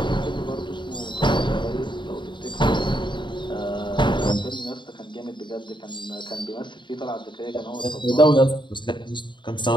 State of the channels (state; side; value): late; right; 0.23 ms